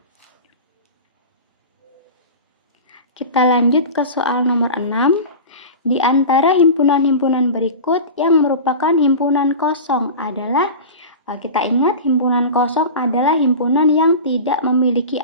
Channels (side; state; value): both; inverted; correlation -0.31